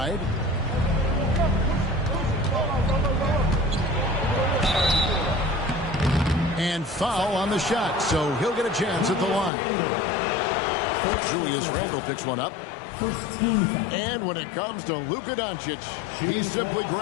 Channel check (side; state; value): right; drops out; at 9.5 s